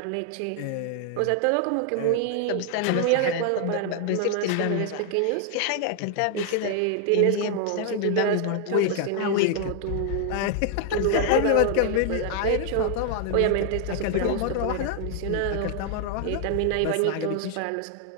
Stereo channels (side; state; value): both; different; correlation 0.00